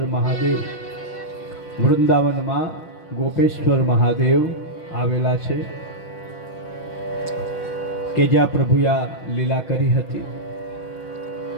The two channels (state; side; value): late; right; 6.2 ms